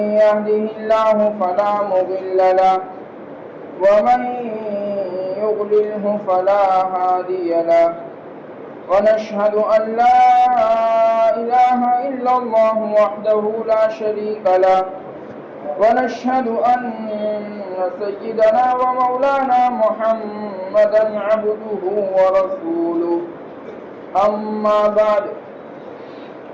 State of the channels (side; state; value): both; identical; correlation 1.00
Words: يهده الله فلا مضل له ومن يضلله فلا هادي له ونشهد أن لا إله إلا الله وحده لا شريك له ونشهد أن سيدنا ومولانا محمدا عبده ورسوله أما بعد